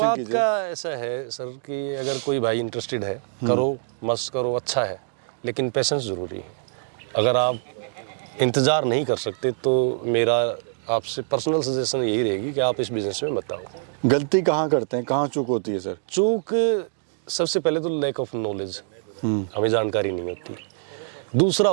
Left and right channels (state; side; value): silent; left; digital silence